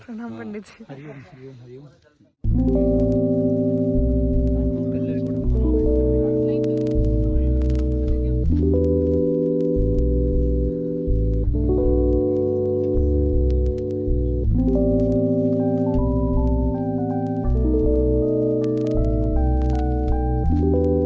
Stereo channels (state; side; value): identical; both; correlation 1.00